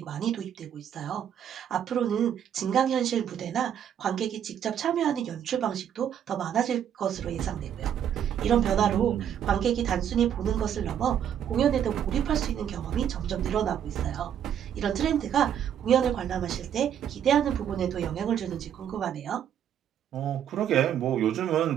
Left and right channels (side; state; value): left; quieter; 9.4 dB